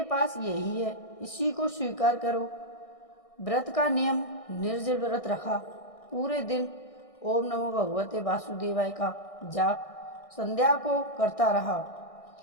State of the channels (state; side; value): late; right; 1.6 ms